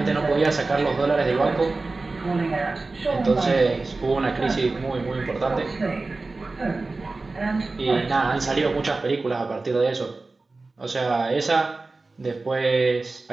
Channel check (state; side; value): quieter; left; 3.5 dB